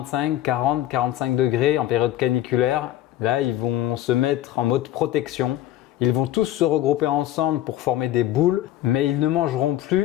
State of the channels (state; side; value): quieter; right; 13.5 dB